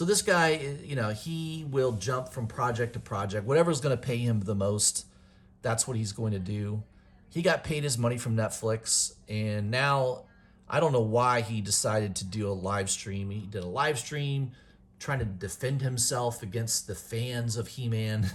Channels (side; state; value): both; identical; correlation 1.00